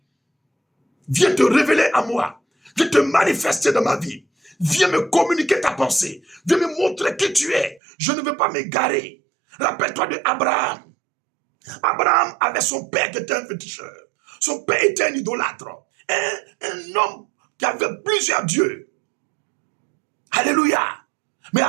viens te révéler à moi, viens te manifester dans ma vie, viens me communiquer ta pensée, viens me montrer qui tu es. Je ne veux pas m'égarer. Rappelle-toi de Abraham. Abraham avait son père qui était un féticheur. Son père était un idolâtre. Un homme qui avait plusieurs dieux. Alléluia. Mais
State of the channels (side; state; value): left; drops out; at 7.8 s